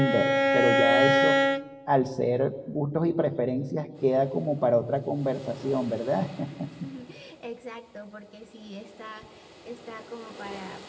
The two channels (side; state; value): both; identical; correlation 1.00